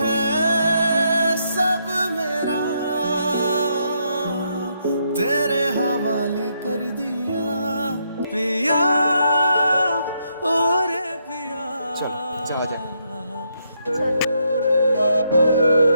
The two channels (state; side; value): inverted; both; correlation -0.77